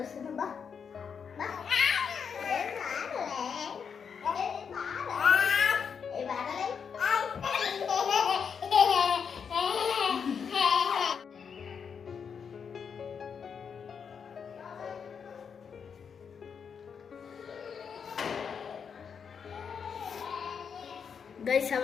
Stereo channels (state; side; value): quieter; right; 6.7 dB